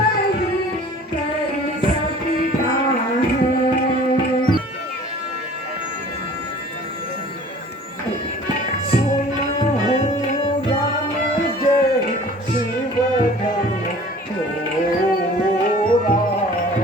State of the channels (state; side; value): normal; both; correlation 0.47